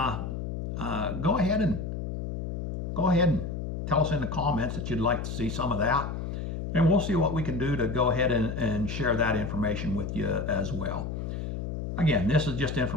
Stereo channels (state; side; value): noise; left; hum, 4 dB below the sound